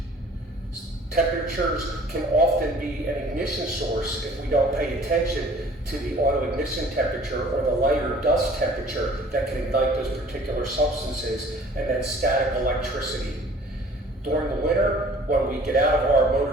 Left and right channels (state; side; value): normal; both; correlation 0.51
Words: Temperatures can often be an ignition source if we don't pay attention to the auto ignition temperature or the lighter dust temperature that can ignite those particular substances, and then static electricity. During the winter, when we get out of our